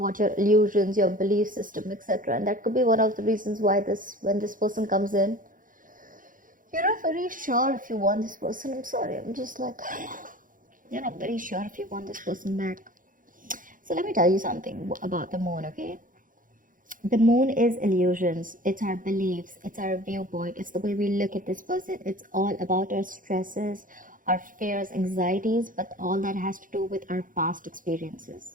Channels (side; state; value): left; late; 0.39 ms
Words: your illusions, your belief system, etc. And that could be one of the reasons why when this person comes in, you're not very sure if you want this person. I'm sorry, I'm just like, you're not very sure if you want this person back. So let me tell you something about the moon, okay? The moon is illusions. It's our beliefs. It's our viewpoint. It's the way we look at this person. It's all about our stresses, our fears, anxieties, but all that has to do with our past